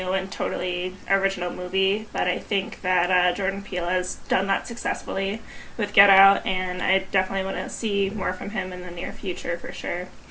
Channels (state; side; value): identical; both; correlation 1.00